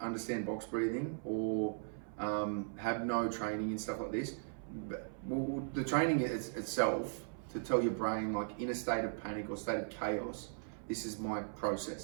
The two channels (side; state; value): left; silent; 52 dB below the other